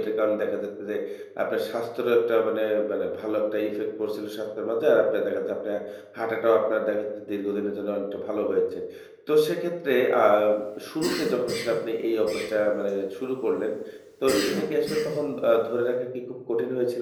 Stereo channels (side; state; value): both; identical; correlation 1.00